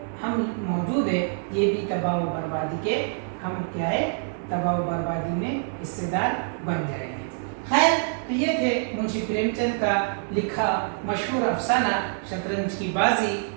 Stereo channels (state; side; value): silent; left; 61 dB below the other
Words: ہم موجود ہیں یہ بھی تباہ و بربادی کے، ہم کیا ہے؟ تباہ و بربادی میں حصے دار بن جائیں گے۔ خیر، تو یہ تھے منشی پریم چند کا لکھا مشہور افسانہ شطرنج کی بازی،